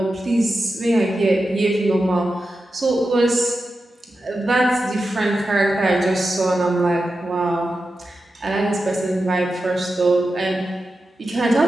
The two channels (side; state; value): both; normal; correlation 0.91